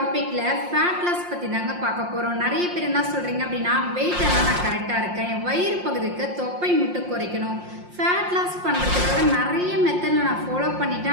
ஃபேட் லாஸ் பத்தி தாங்க பார்க்க போறோம். நிறைய பேர் என்ன சொல்றீங்க அப்படின்னா, வெயிட் எல்லாம் நான் கரெக்டா இருக்கேன், என் வயிறு பகுதிக்கு தொப்பை மட்டும் குறைக்கணும், ஃபேட் லாஸ் பண்றதுக்காக நிறைய மெத்தட்ல நான் ஃபாலோ பண்ணிட்டேன்,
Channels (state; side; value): late; left; 5.6 ms